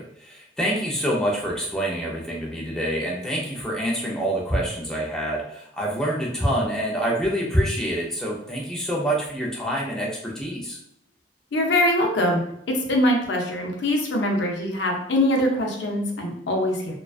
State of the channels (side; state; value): both; normal; correlation 0.47